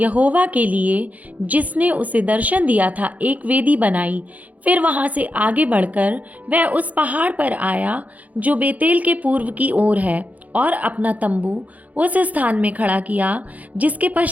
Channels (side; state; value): left; late; 0.075 ms